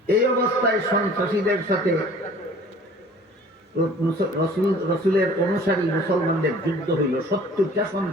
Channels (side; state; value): both; normal; correlation 0.49